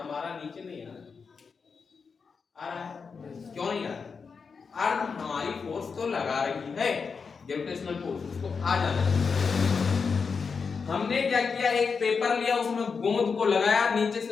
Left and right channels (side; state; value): right; quieter; 5.4 dB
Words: नीचे नहीं आ रहा है। क्यों नहीं आ रहा? अर्थ हमारी फोर्स तो लगा रही है, ग्रेविटेशनल फोर्स, उसको आ जाना है। हमने क्या किया, एक पेपर लिया, उसमें गोंद को लगाया, नीचे